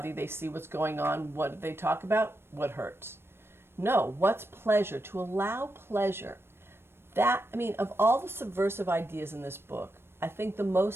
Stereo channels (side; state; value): left; late; 0.12 ms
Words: they see what's going on, what do they talk about? What hurts. No, what's pleasure? To allow pleasure. Of all the subversive ideas in this book, I think the